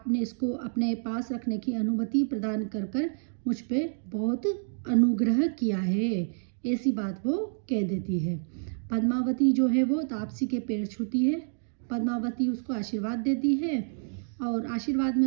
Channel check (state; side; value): silent; left; digital silence